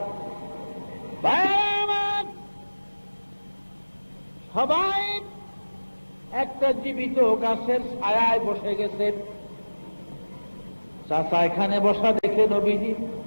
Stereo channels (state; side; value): inverted; both; correlation -1.00